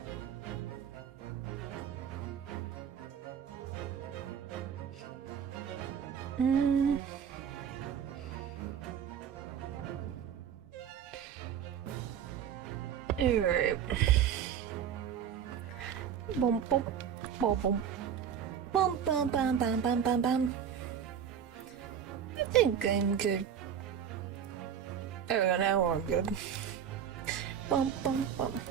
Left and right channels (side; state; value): left; quieter; 8.5 dB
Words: Alright. Boom, boom, boom, boom. Bum, bum, bum, bum, bum, bum, bum. I think I'm good. There we go, now I'm good. Bum, bum, bum.